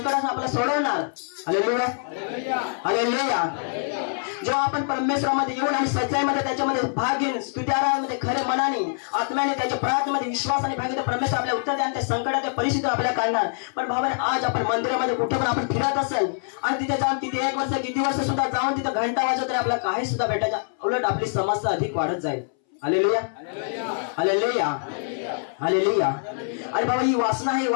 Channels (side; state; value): right; silent; 62 dB below the other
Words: आपल्याला सोडवणार. Hallelujah, hallelujah. जेव्हा आपण परमेश्वरामध्ये येऊन आणि सच्चाईमध्ये त्याच्यामध्ये भाग घेऊन स्तुत्याराधनेमध्ये खरे मनाने आत्म्याने त्याच्या प्रार्थनेमध्ये विश्वासाने भाग घेतो, परमेश्वर आपल्याला उत्तर द्या आणि त्या संकटाच्या परिस्थिती आपल्याला काढणार. पण भावाने आज आपण मंदिरामध्ये कुठे पण आपण फिरत असेल आणि तिथे जाऊन तिथे 1 वर्ष किती वर्ष सुद्धा जाऊन तिथे घंटा वाजवत तरी आपल्याला काही सुद्धा भेटायचं, उलट आपली समस्या अधिक वाढत जाईल. Hallelujah, hallelujah, hallelujah. आणि बाबा ही वासना आहे,